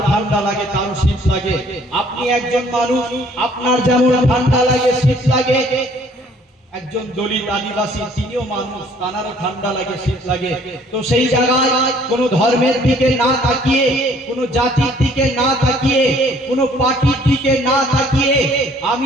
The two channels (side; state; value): both; normal; correlation 0.59